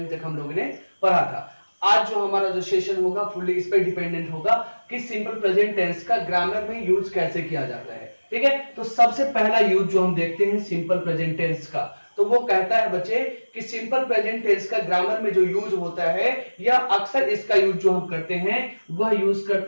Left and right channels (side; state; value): both; inverted; correlation -1.00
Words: तक हम लोगों ने पढ़ा था। आज जो हमारा जो सेशन होगा फुल्ली इस पे डिपेंडेंट होगा कि सिंपल प्रेजेंट टेंस का ग्रामर में यूज कैसे किया जाता है। ठीक है, तो सबसे पहला यूज जो हम देखते हैं सिंपल प्रेजेंट टेंस का, तो वो कहता है बच्चे कि सिंपल प्रेजेंट टेंस का ग्रामर में जो यूज होता है या अक्सर इसका यूज जो हम करते हैं वह यूज